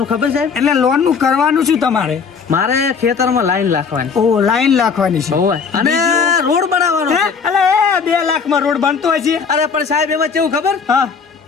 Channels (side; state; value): right; quieter; 5.8 dB